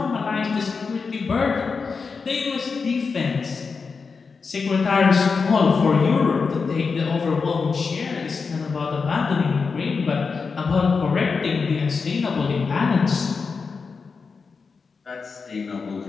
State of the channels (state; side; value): quieter; right; 5.0 dB